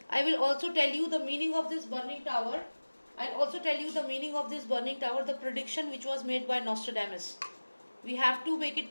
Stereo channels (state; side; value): inverted; both; correlation -1.00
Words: will also tell you the meaning of this burning tower. I'll also tell you the meaning of this burning tower, the prediction which was made by Nostradamus. We have to make